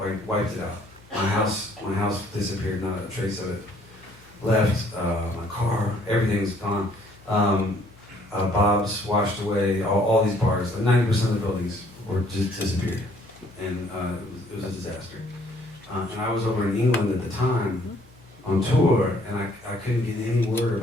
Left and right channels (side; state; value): left; noise; hum, 27 dB below the sound